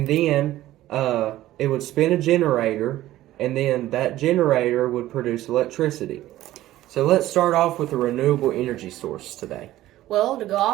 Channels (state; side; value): quieter; left; 14.9 dB